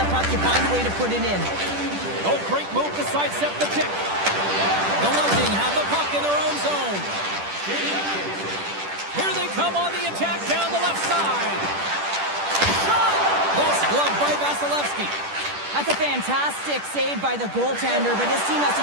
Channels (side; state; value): left; late; 10 ms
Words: puck, you find a way to put it in. Oh, great move to sidestep the check. The Lightning have the puck in their own zone. Here they come on the attack down the left side. Shot! Best glove by Vasilevsky. That's a fantastic save by the goaltender, but his team has